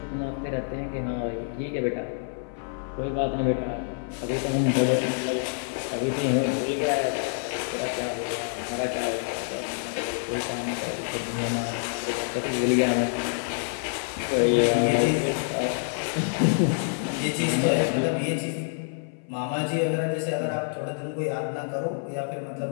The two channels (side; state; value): right; silent; 56 dB below the other